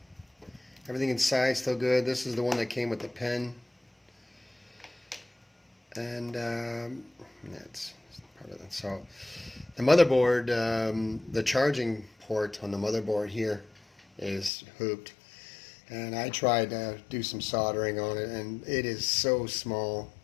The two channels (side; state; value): right; drops out; at 14.5 s